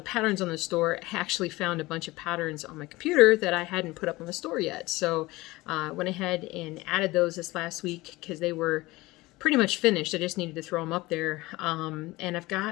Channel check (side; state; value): right; quieter; 20.3 dB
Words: patterns on the store, I actually found a bunch of patterns on my computer that I hadn't put up on the store yet. So went ahead and added those this last week because they were pretty much finished. I just needed to throw them up there. And I've